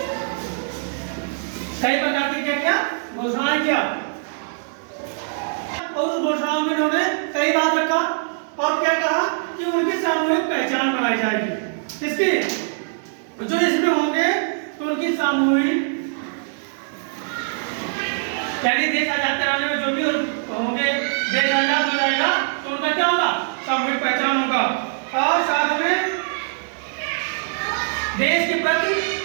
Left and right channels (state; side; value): silent; left; 63 dB below the other